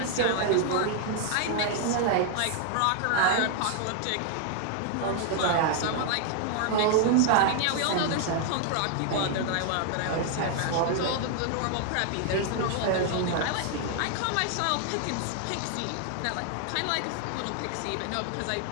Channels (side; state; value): both; different; correlation 0.00